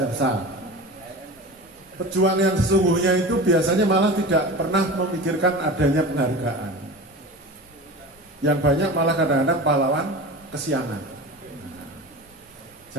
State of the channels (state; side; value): normal; both; correlation 0.31